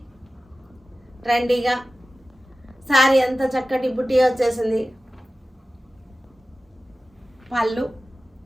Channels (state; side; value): normal; both; correlation 0.95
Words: ట్రెండీగా. శారీ అంతా చక్కటి బుటీ వచ్చేసింది. పళ్ళు,